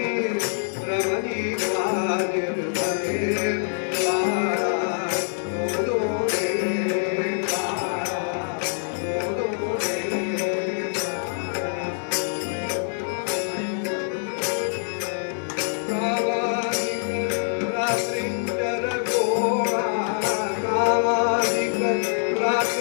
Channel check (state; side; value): silent; right; 62 dB below the other